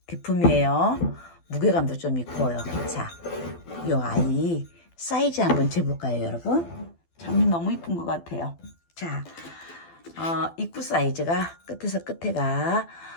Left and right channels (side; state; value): right; late; 12 ms